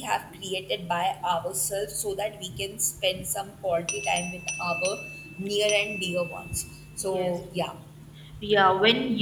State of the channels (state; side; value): identical; both; correlation 1.00